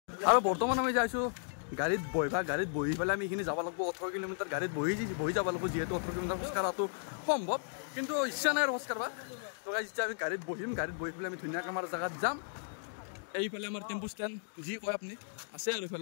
আৰু বৰ্তমান আমি যাইছো গাড়ীত বহি পেলাই আমি এইখিনি যাব লাগিব 18 কিলোমিটাৰ গাড়ীত বহি যাব লাগিব যেহেতু 18 কিলোমিটাৰ খোজ কাঢ়াটো সম্ভৱ কিন্তু ইচ্ছা নাই খোজ কাঢ়বা তো গাইস এতিয়া আমি গাড়ীত বহি পেলাই আমি ধুনীয়াকৈ আমাৰ জাগাত যাম এইফালে আমাৰ টেম্পু ষ্টেণ্ড যি কয় আপুনি আছে আৰু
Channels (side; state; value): right; silent; digital silence